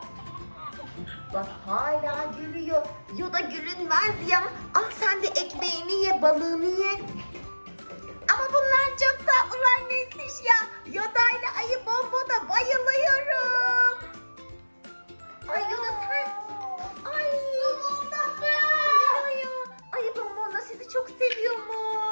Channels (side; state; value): both; inverted; correlation -1.00